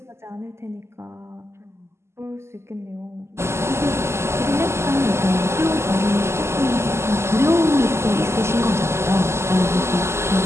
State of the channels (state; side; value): late; left; 0.13 ms